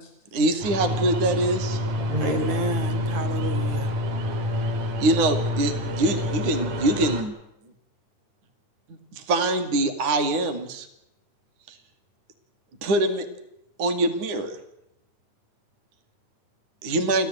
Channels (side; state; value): left; late; 9.7 ms